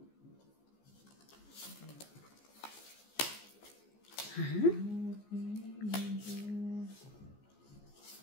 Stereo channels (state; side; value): late; right; 14 ms